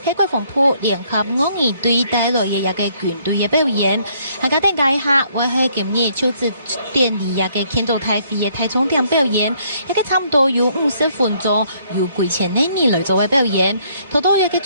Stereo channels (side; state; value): both; inverted; correlation -0.67